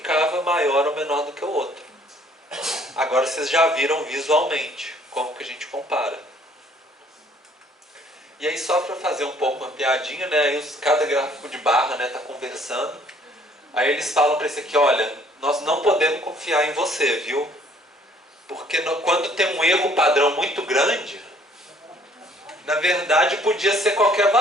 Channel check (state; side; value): normal; both; correlation 0.60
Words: maior ou menor do que o outro. Agora vocês já viram visualmente como que a gente compara. E aí só para fazer um pouco uma piadinha, né, aí cada gráfico de barra está conversando, aí eles falam para esse aqui, olha, nós não podemos confiar em você, viu? Porque quando tem um erro padrão muito grande, na verdade podia ser qualquer